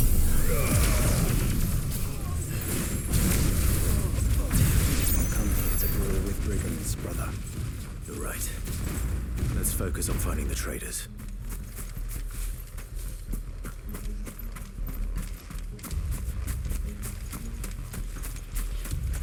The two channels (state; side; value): identical; both; correlation 1.00